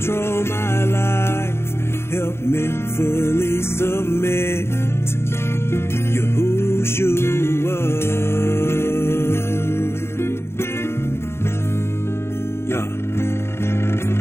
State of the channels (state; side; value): late; right; 0.12 ms